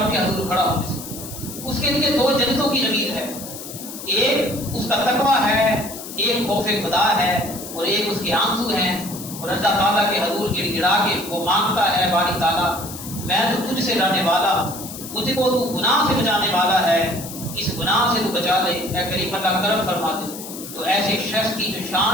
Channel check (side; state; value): left; noise; hiss, 11 dB below the sound